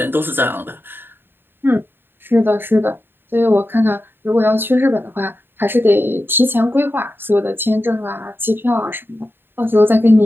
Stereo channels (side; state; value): left; late; 0.10 ms